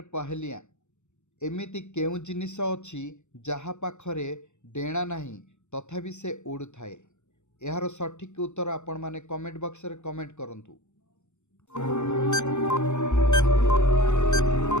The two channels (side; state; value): right; late; 0.83 ms